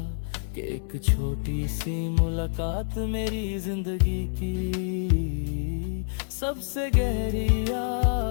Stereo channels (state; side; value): silent; right; 60 dB below the other